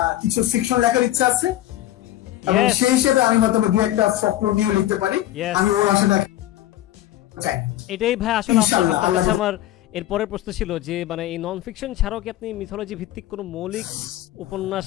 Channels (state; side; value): quieter; right; 14.1 dB